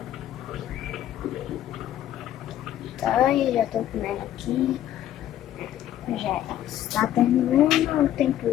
Tá, eu já tô comendo aqui. Já está terminando o tempo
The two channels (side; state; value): right; quieter; 12.0 dB